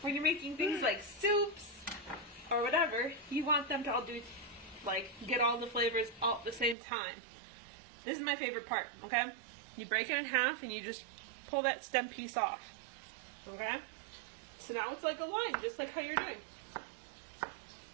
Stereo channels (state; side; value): drops out; left; at 6.8 s